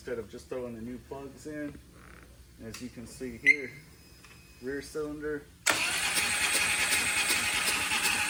of just throwing the new plugs in. As you can see here, rear cylinder,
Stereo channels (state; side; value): identical; both; correlation 1.00